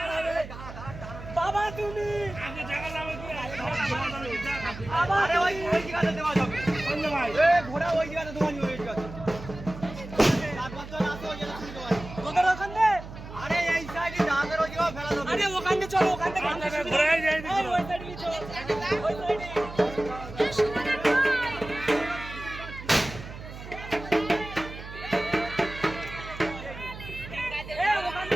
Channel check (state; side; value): noise; right; hum, 13 dB below the sound